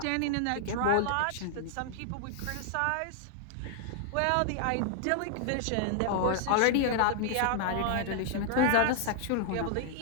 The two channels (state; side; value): different; both; correlation -0.01